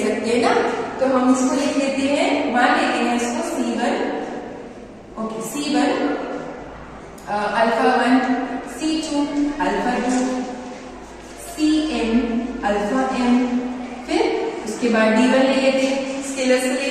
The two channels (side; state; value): both; identical; correlation 1.00